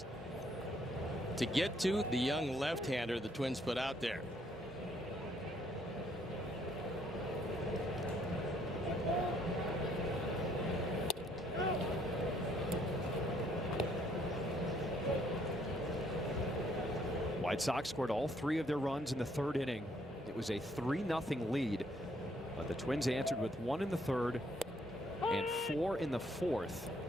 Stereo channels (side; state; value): both; normal; correlation 0.67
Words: to get to the young left-hander the Twins put out there. White Sox scored all 3 of their runs in the 3rd inning. It was a 3-0 lead, but the Twins answered with 1 in the 3rd and 4 in the 4th